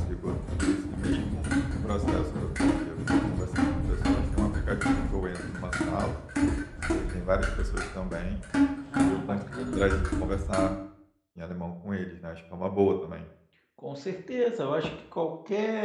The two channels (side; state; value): both; identical; correlation 1.00